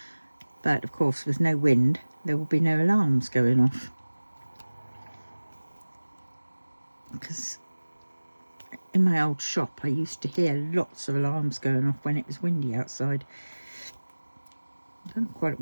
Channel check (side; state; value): both; inverted; correlation -1.00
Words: But of course, with no wind, there will be no alarms going off. Because in my old shop, I used to hear lots of alarms going off when it was windy outside. I don't know quite